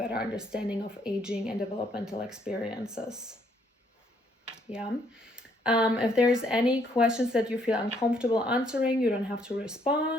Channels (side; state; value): both; normal; correlation 0.69